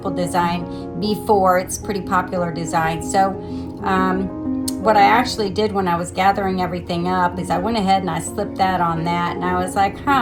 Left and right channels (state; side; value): identical; both; correlation 1.00